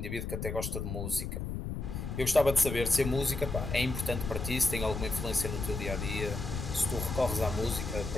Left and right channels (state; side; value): noise; left; rumble, 5 dB below the sound